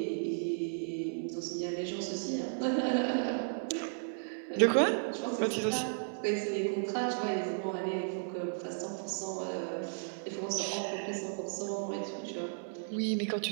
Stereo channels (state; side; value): silent; left; 55 dB below the other